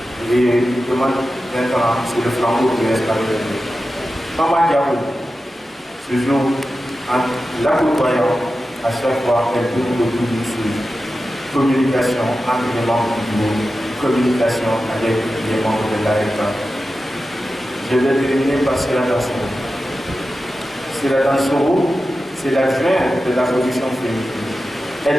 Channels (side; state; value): both; normal; correlation 0.93